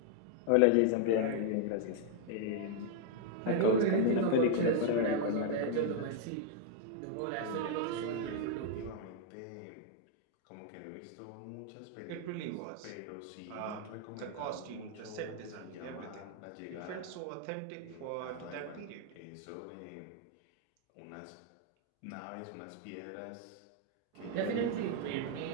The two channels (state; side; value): different; both; correlation 0.00